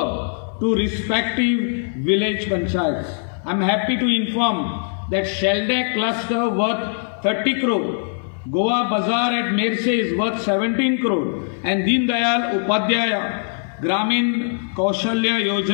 to respective village panchayats. I'm happy to inform that Shelday cluster worth 30 crore, Goa Bazaar at Merse is worth 17 crore, and Deen Dayal Upadhyaya Gramin Kaushalya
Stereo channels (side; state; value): right; silent; 60 dB below the other